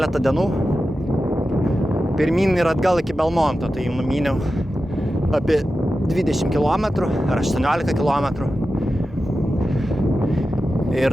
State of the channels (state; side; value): normal; both; correlation 0.92